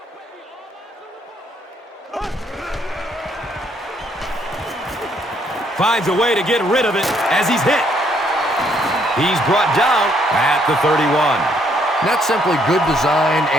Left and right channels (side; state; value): both; normal; correlation 0.69